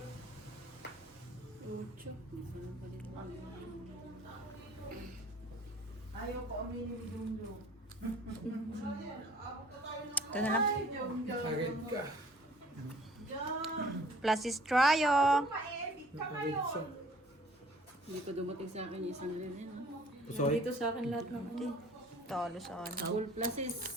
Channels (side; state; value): both; normal; correlation 0.54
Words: Ucho. Ayaw ko aminin ni Dumdum. Ito na lang. Agad ka. Plus is tryo. Hindi pa dumating sa akin yung isang rin. Sorry. Dito sa akin lahat ng ano. Talo sa ano. Full pluses.